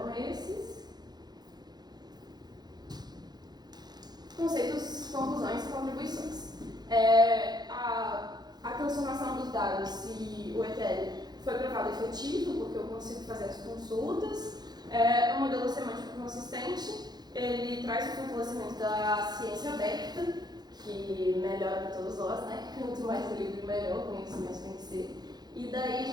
esses. Conceitos, conclusões e contribuições. A transformação dos dados e o ETL foi provado efetivo, porque eu consigo fazer as consultas. O modelo semântico consistente, ele traz o fortalecimento da ciência aberta, que melhora para todos nós, né? Quanto mais livre, melhor o conhecimento tem que ser. E daí a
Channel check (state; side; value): late; left; 0.20 ms